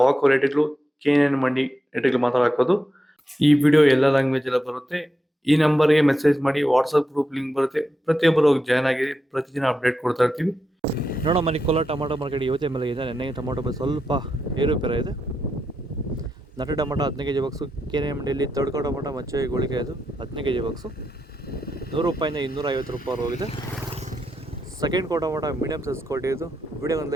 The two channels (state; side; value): normal; both; correlation 0.86